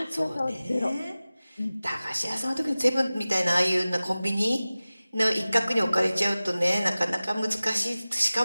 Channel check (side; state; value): both; inverted; correlation -0.97